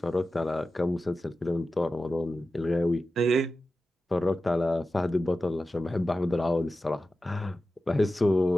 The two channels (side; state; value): both; normal; correlation 0.93